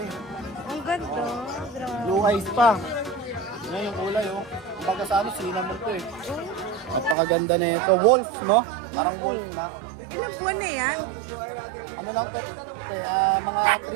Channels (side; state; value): left; drops out; at 7.2 s